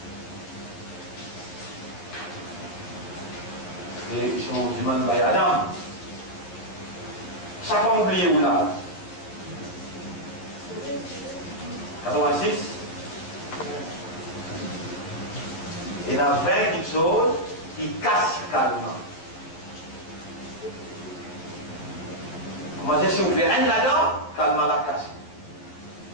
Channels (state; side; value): late; right; 12 ms